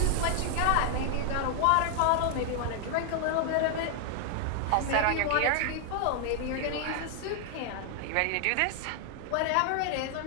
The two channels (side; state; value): both; different; correlation 0.00